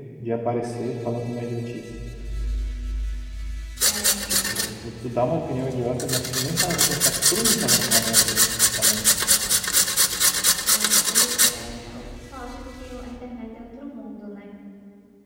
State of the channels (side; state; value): both; identical; correlation 1.00